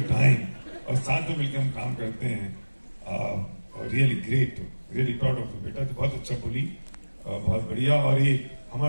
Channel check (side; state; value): both; inverted; correlation -1.00